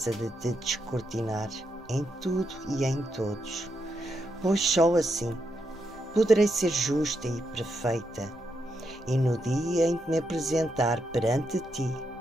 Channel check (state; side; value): normal; both; correlation 0.82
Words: de te descortinar em tudo e em todos, pois só assim poderei ser justa e perfeita, e no dia em que me apresentar perante ti,